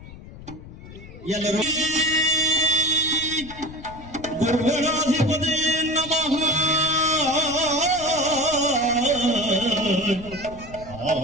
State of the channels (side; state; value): left; noise; rumble, 16 dB below the sound